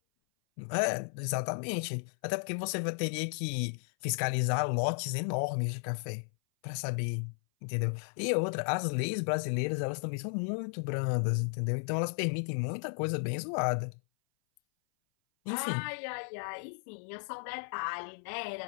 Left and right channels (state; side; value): silent; right; 55 dB below the other